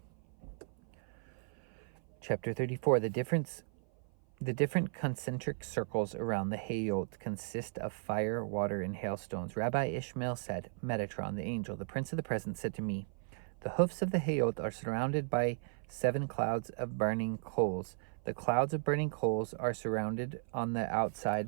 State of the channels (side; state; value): left; silent; 54 dB below the other